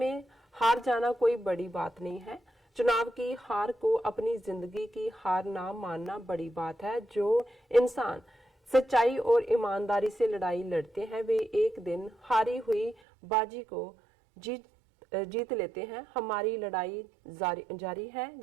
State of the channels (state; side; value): drops out; left; at 13.0 s